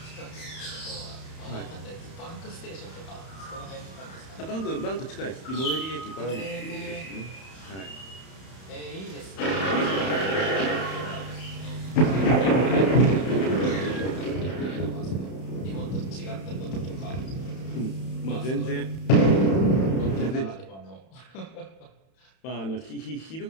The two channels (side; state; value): right; late; 31 ms